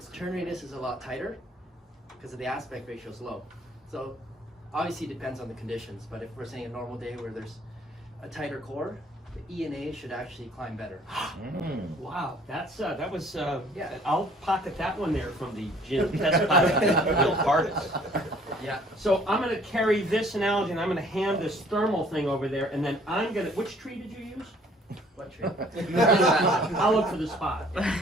turn radius is a lot tighter because of the aspect ratio is low. So obviously it depends on the conditions, but if we're saying a normal day where there's a tighter core, the ENA should actually climb better. Wow, that was Yeah. I'll pocket that one there from the gym test pilot, Bill Cardis. Yeah. So I'm going to carry this analogy and I'm going to hand this thermal thing over there, and then I'm going to. Which tree did you use? What tree? I'll look for the spot.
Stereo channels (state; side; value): normal; both; correlation 0.57